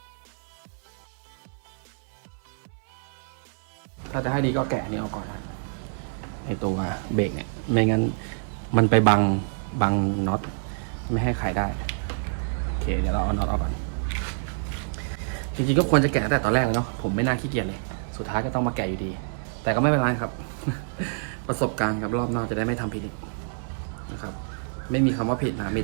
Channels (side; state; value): left; silent; 56 dB below the other